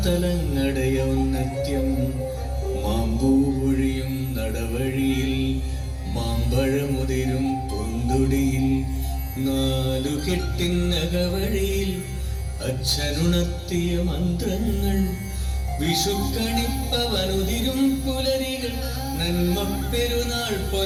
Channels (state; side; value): identical; both; correlation 1.00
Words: ഔന്നത്യം, മാമ്പൂവൊഴിയും നടവഴിയിൽ, മാമ്പഴമുതിരും പൂന്തുടിയിൽ, നാലുകെട്ടിനകവഴിയിൽ അച്ഛനുണർത്തിയ മന്ത്രങ്ങൾ, വിഷുക്കണിപ്പവനുതിരും പുലരികൾ, നന്മ പെരുന്നാൾ